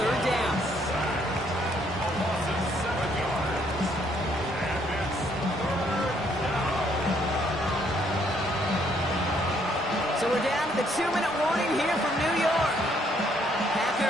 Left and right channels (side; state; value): both; normal; correlation 0.68